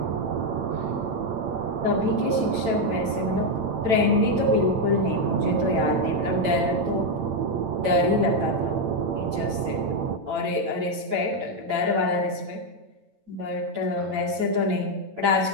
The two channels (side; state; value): left; late; 8.9 ms